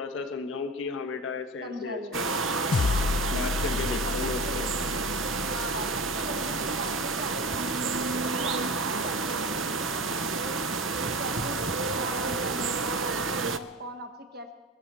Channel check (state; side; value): normal; both; correlation 0.30